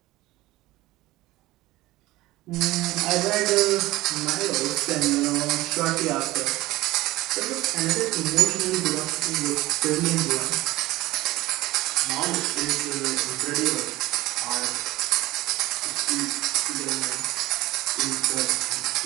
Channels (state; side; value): quieter; left; 18.2 dB